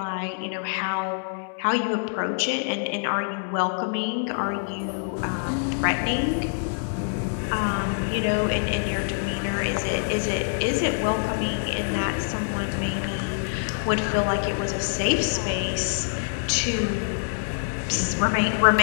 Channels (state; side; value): silent; right; 61 dB below the other